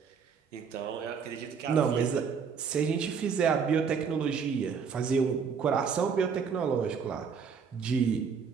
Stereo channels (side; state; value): left; quieter; 6.2 dB